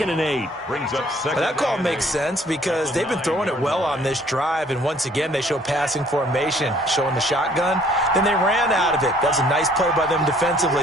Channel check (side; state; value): both; normal; correlation 0.59